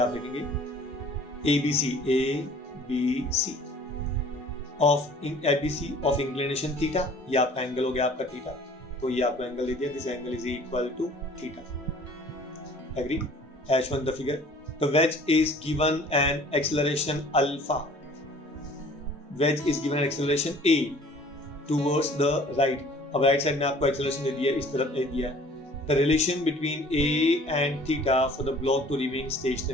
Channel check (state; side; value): normal; both; correlation 0.51